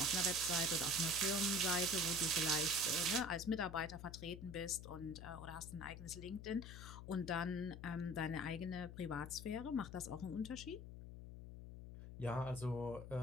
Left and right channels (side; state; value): left; noise; hum, 11 dB below the sound